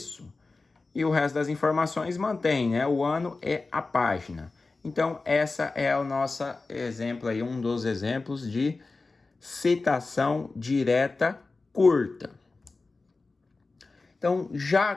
E o resto das informações mantém, né? O ano e a página. Então, essa é o nosso exemplo aí, um dos exemplos de citação direta curta. Então, já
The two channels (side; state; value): right; quieter; 3.7 dB